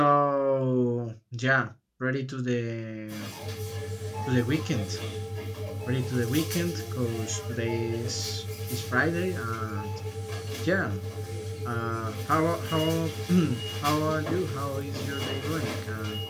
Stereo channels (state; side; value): identical; both; correlation 1.00